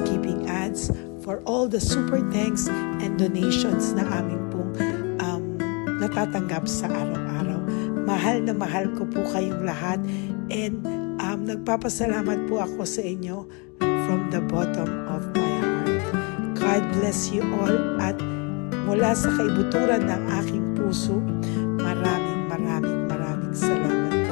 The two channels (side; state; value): right; quieter; 32.6 dB